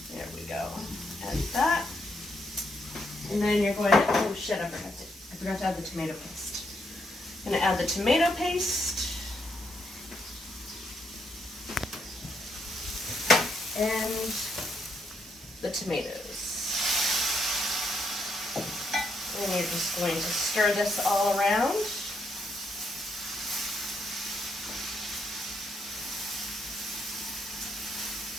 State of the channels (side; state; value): both; normal; correlation 0.77